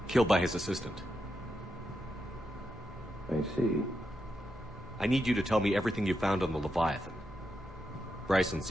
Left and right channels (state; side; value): normal; both; correlation 0.85